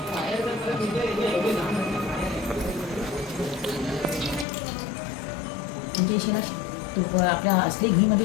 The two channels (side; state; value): right; drops out; at 4.5 s